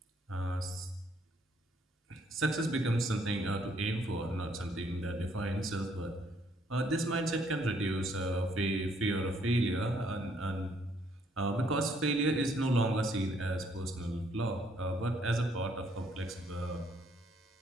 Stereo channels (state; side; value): normal; both; correlation 0.67